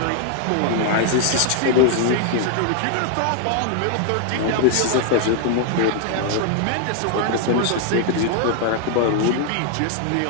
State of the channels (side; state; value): both; different; correlation 0.00